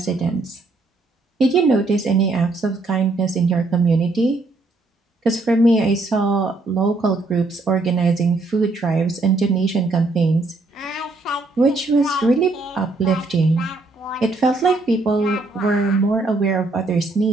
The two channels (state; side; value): quieter; left; 3.2 dB